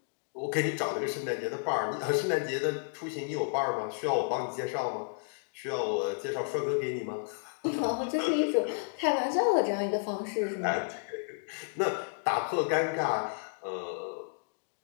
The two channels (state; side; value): silent; right; digital silence